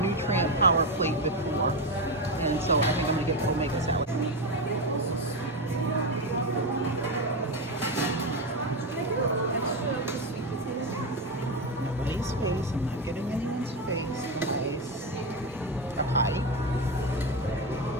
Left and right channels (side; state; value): right; noise; rumble, 24 dB below the sound